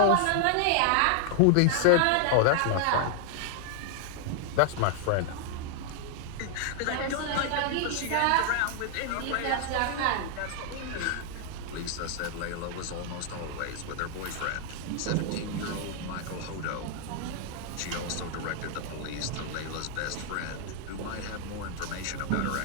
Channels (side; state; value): both; different; correlation 0.00